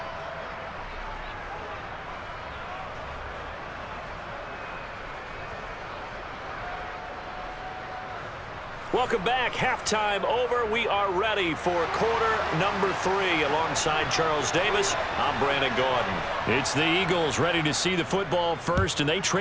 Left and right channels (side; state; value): both; identical; correlation 1.00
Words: Welcome back. Halftime over. We are ready for quarter number 3. Alongside Charles Davis, I'm Brandon Gaudin. It's the Eagles ready to see the football first, and they